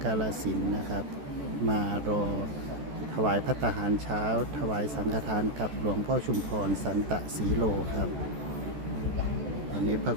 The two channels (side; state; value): left; late; 14 ms